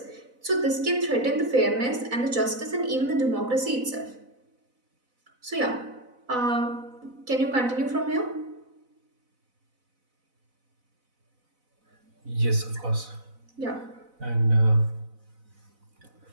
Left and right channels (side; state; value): left; late; 4.0 ms